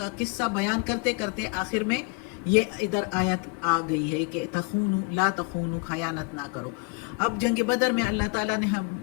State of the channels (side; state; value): right; quieter; 31.9 dB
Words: قصہ بیان کرتے کرتے آخر میں یہ ادھر آیت آ گئی ہے کہ تخونو، لا تخونو، خیانت نہ کرو۔ اب جنگ بدر میں اللہ تعالیٰ نے